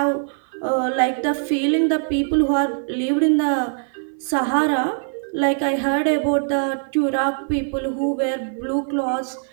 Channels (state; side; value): silent; left; 61 dB below the other